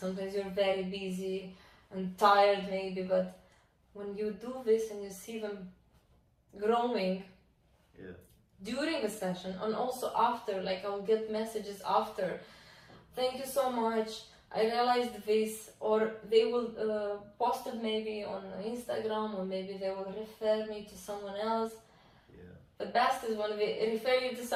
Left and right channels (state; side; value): identical; both; correlation 1.00